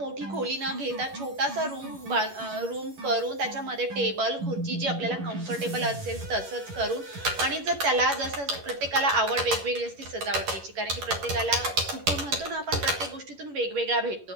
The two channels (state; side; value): late; left; 11 ms